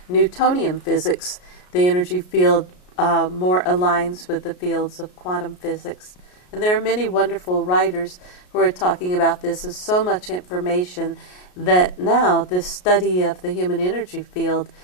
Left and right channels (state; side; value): late; right; 33 ms